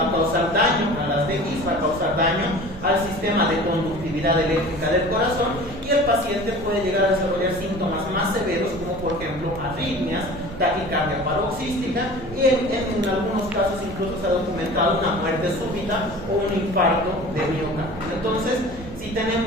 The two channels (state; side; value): noise; right; rumble, 15 dB below the sound